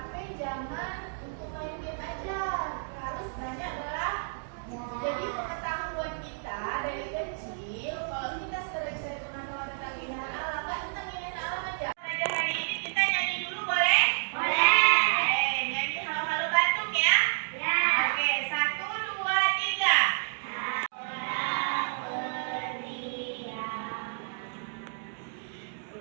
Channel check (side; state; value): left; silent; digital silence